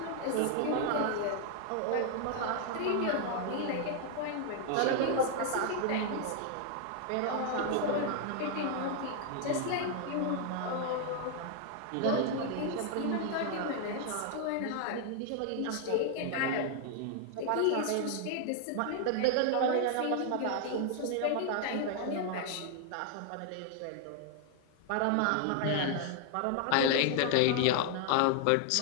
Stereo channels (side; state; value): both; different; correlation 0.00